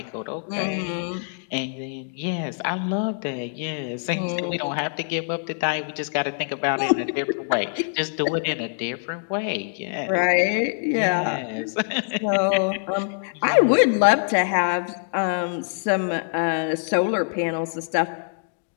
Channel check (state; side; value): silent; right; digital silence